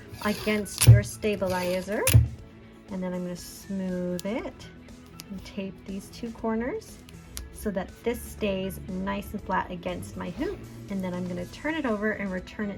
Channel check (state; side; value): identical; both; correlation 1.00